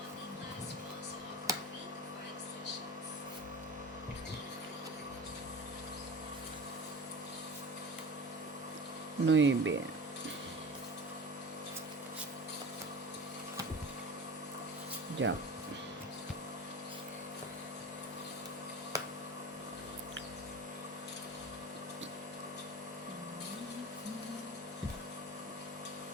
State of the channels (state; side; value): normal; both; correlation 0.34